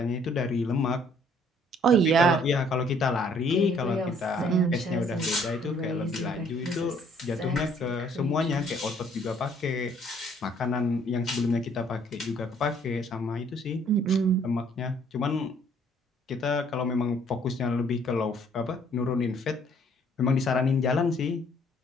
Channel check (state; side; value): normal; both; correlation 0.62